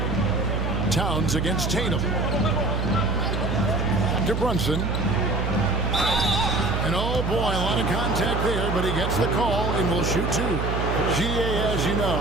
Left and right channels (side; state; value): right; noise; hum, 1 dB below the sound